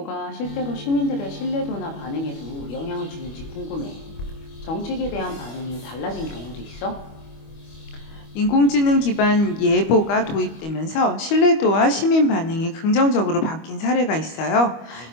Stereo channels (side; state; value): right; late; 25 ms